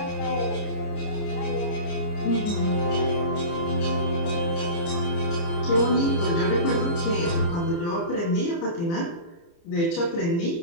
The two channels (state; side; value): late; right; 29 ms